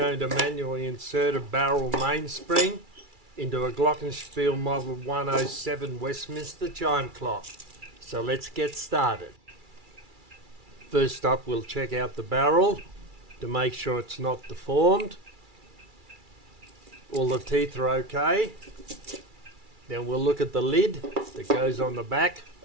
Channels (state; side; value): late; left; 2.3 ms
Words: to manually insert a barrel mainspring into a Glocken-Speil Model 107 Westminster chime clock. So let's get started. First up, we'll check out the barrel to make sure it's not deformed. All the teeth are okay. Then we'll look at the lid that goes on the back